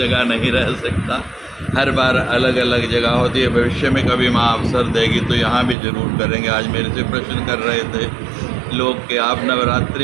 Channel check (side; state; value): left; drops out; at 5.8 s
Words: नहीं रह सकता, हर बार अलग अलग जगह होती है। भविष्य में कभी माँ अवसर देगी तो यहाँ भी जरूर करेंगे। आज मेरे से प्रश्न कर रहे थे लोग कि आप